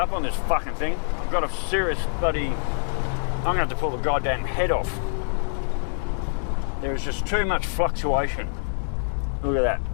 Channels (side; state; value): right; silent; 62 dB below the other